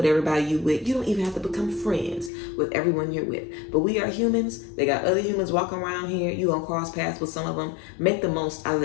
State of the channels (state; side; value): drops out; right; at 2.3 s